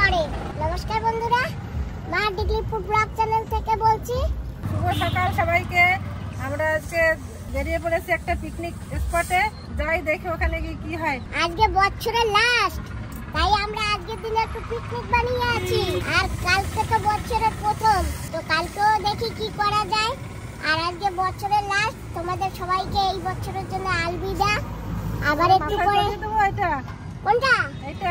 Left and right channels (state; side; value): identical; both; correlation 1.00